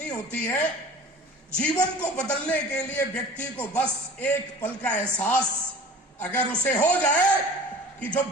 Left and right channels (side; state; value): both; normal; correlation 0.42